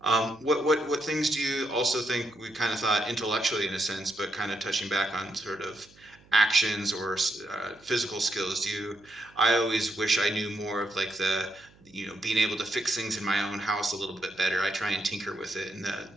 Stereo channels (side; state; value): right; noise; hum, 27 dB below the sound